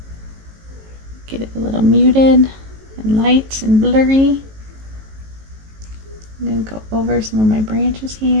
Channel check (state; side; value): late; left; 18 ms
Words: muted and light and blurry. I'm going to go over some of my branches